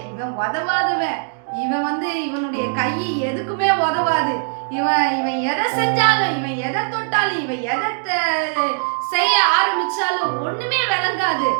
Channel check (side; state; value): left; silent; digital silence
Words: இவன் உதவாதவன், இவன் இவனுடைய கை எதுக்குமே உதவாது, இவன் எதை செஞ்சாலும், இவன் எதை தொட்டாலும், இவன் எதை செய்ய ஆரம்பிச்சாலும் ஒண்ணுமே விளங்காது